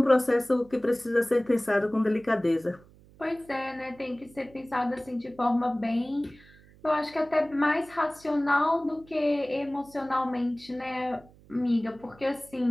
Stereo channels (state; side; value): noise; right; hum, 25 dB below the sound